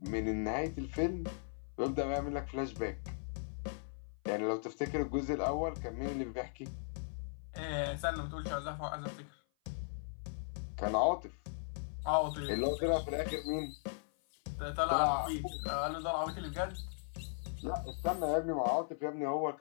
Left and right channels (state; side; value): silent; right; 53 dB below the other